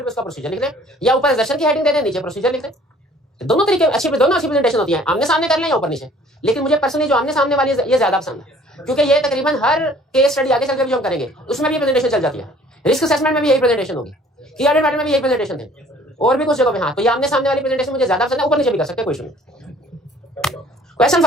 पे उसका प्रोसीजर लिख दें, या ऊपर असर्शन की हेडिंग दे दें, नीचे प्रोसीजर लिख दें। दोनों तरीके अच्छी, दोनों अच्छी प्रेजेंटेशन होती है, आमने सामने कर लें या ऊपर नीचे। लेकिन मुझे पर्सनली जो आमने सामने वाली ये ज्यादा पसंद है, क्योंकि ये तकरीबन हर केस स्टडी आगे चलकर भी जो हम करेंगे उसमें भी प्रेजेंटेशन चल जाती है। रिस्क असेसमेंट में भी यही प्रेजेंटेशन होगी, की ऑडिट मैटर में भी यही प्रेजेंटेशन थे, और भी कुछ जगह पे। हाँ, तो ये आमने सामने वाली प्रेजेंटेशन मुझे ज्यादा पसंद है, ऊपर नीचे भी कर सकते हैं, कोई इशू नहीं। Question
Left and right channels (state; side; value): normal; both; correlation 0.54